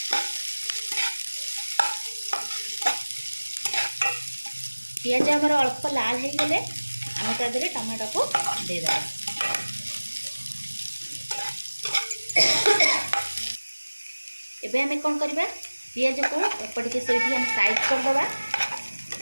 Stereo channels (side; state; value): both; inverted; correlation -1.00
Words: पियाज आमर अल्प लाल हो गले आम तादरे टमाटो को दे दबा। एबे हमें कौन करबा पियाज को एपटिके सेठी हम साइड कर दबा।